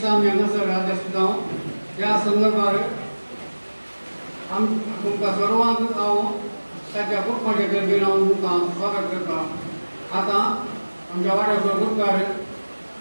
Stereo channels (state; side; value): inverted; both; correlation -1.00